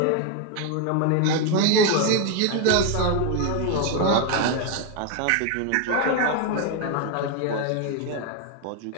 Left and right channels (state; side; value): different; both; correlation 0.01